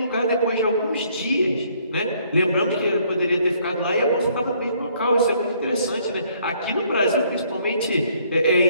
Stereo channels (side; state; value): both; inverted; correlation -0.65